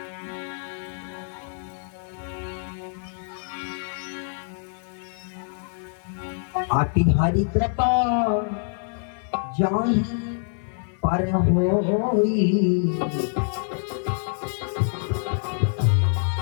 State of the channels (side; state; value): right; silent; 61 dB below the other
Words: आति हरि कृपा जाहि पर होई,